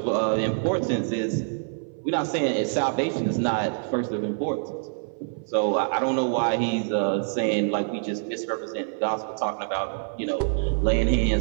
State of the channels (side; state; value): left; silent; 60 dB below the other